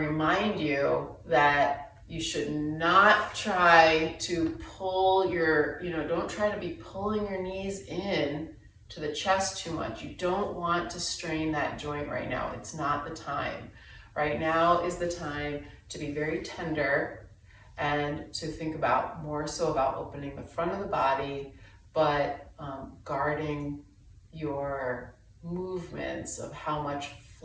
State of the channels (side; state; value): both; identical; correlation 1.00